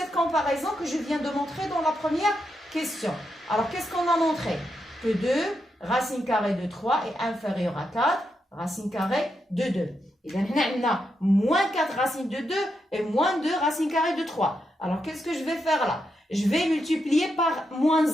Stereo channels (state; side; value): normal; both; correlation 0.84